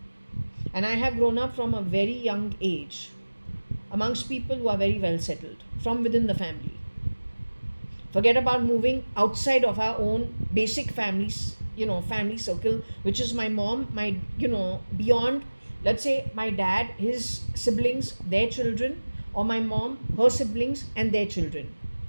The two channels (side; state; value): both; inverted; correlation -1.00